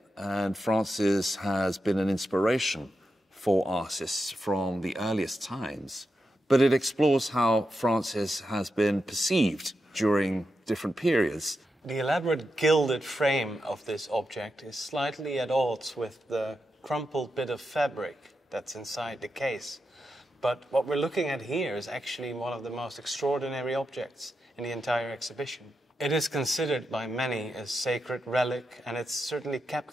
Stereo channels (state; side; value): normal; both; correlation 0.87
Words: And Francis has been an inspiration for artists from the earliest times. But it explores how Francis has been perceived during different periods. The elaborate gilded frame of this object is slightly at odds with the crumpled bit of fabric that's inside the case. But what we're looking at here is actually one of the most extraordinary objects in the entire exhibition. It is considered by many a sacred relic, and it's certainly